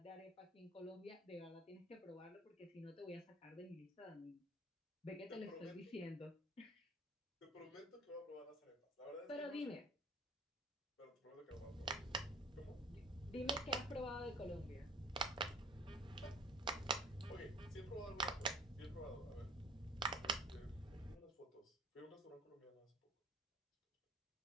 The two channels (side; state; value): both; normal; correlation 0.48